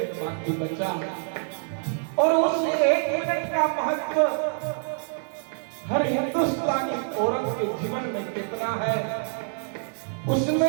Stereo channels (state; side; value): silent; left; digital silence